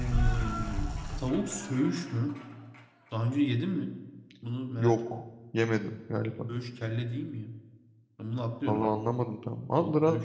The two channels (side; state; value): both; identical; correlation 1.00